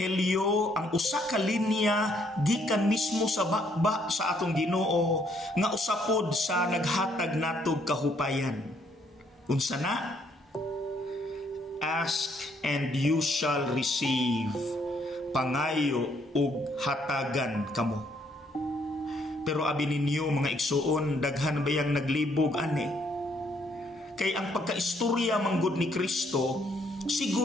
ang usa ka linya gikan mismo sa bakba sa atong Ginoo nga usapod sa naghatag natog kahupayan. Unsa na? Ask and you shall receive. Pangayo ug hatagan kamo. Pero abi ninyo mga igsuon, daghan bayang naglibog ani. Kay ang pagkaistorya manggod ni Kristo,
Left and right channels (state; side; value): normal; both; correlation 0.69